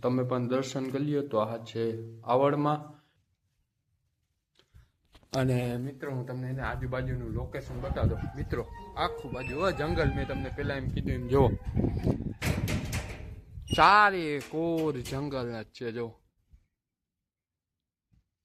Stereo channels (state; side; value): identical; both; correlation 1.00